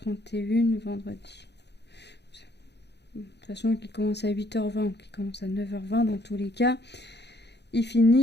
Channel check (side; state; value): right; late; 0.49 ms